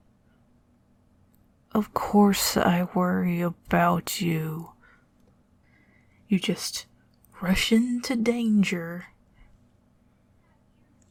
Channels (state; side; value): identical; both; correlation 1.00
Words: Of course I worry about you. You just rush into danger.